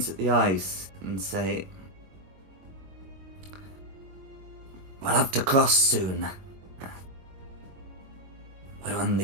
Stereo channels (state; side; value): late; left; 22 ms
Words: at the ice and say, "We'll have to cross soon. We're on